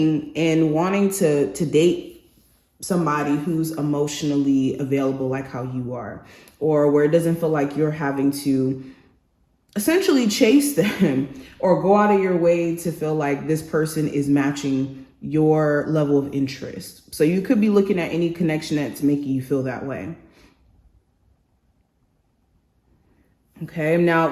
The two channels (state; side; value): identical; both; correlation 1.00